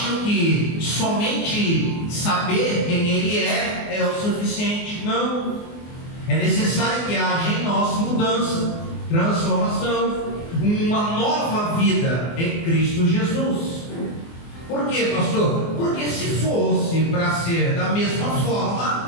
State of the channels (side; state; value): right; late; 24 ms